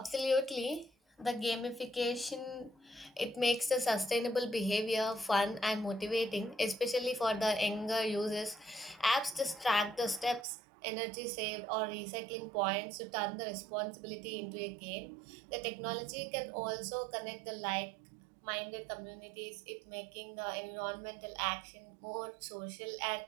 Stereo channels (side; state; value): left; drops out; at 10.5 s